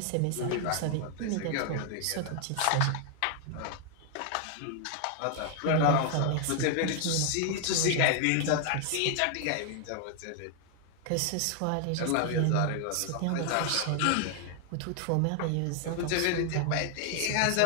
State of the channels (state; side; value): different; both; correlation 0.00